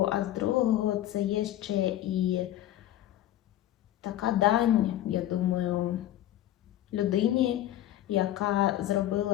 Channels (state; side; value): quieter; right; 13.2 dB